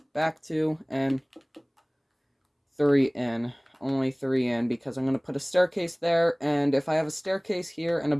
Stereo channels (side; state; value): both; identical; correlation 1.00